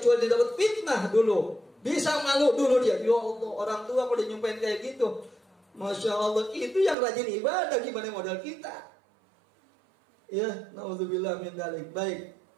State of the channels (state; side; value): drops out; left; at 7.0 s